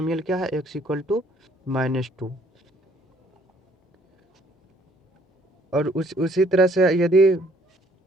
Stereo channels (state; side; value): normal; both; correlation 0.62